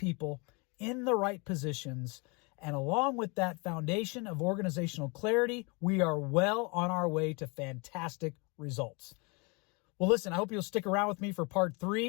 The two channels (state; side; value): quieter; right; 30.1 dB